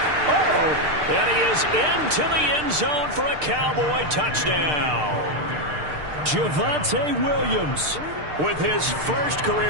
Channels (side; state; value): left; late; 6.6 ms